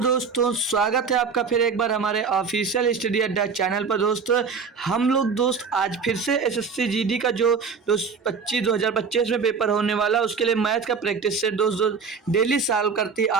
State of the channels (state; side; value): quieter; left; 5.5 dB